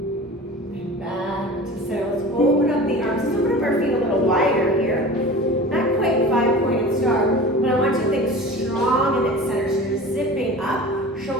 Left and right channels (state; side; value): normal; both; correlation 0.37